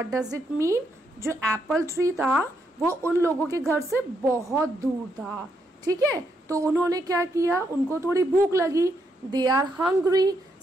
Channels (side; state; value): both; normal; correlation 0.78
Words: does it mean? जो apple tree था वो उन लोगों के घर से बहुत दूर था, ठीक है. तो उन्होंने क्या किया, उनको थोड़ी भूख लगी. They are hungry,